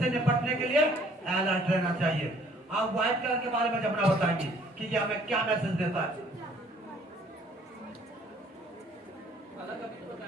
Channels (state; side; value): normal; both; correlation 0.59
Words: निपटने के लिए अलर्ट रहना चाहिए। आप व्हाइट कलर के बारे में जमुना बताएंगे कि ये हमें क्या मैसेज देता है।